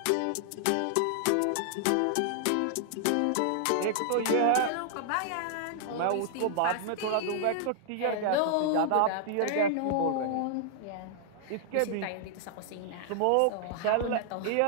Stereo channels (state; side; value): different; both; correlation 0.00